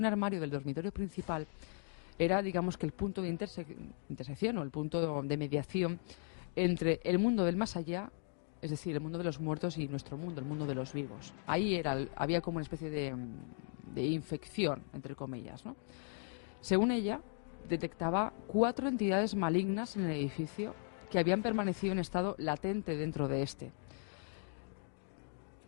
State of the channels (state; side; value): silent; right; 53 dB below the other